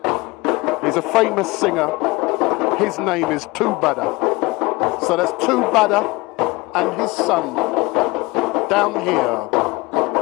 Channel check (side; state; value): right; quieter; 23.4 dB